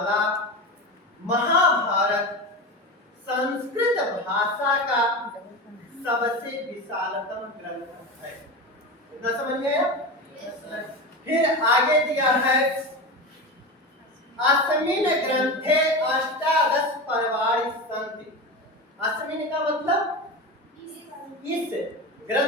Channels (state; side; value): normal; both; correlation 0.24